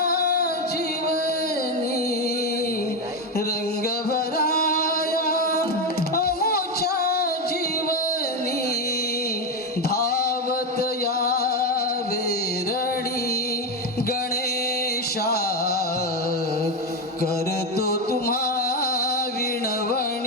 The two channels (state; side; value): normal; both; correlation 0.12